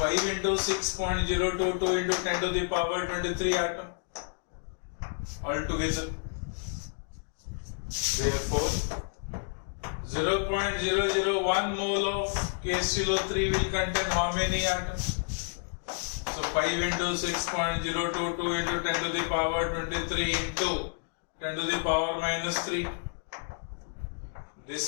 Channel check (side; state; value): right; silent; digital silence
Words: into 6.022 into 10 to the power 23 atom altogether. Therefore, 0.001 mole of KClO3 will contain how many atoms? So 5 into 6.022 into 10 to the power 23 into 10 to the power minus 3.